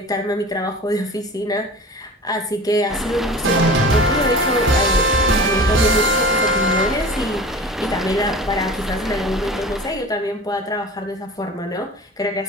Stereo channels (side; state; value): both; normal; correlation 0.38